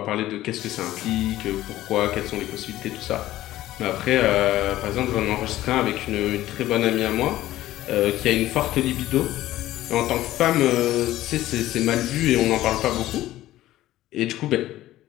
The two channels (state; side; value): quieter; right; 14.9 dB